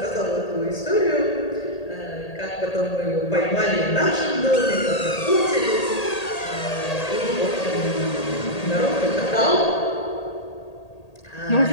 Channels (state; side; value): late; right; 1.8 ms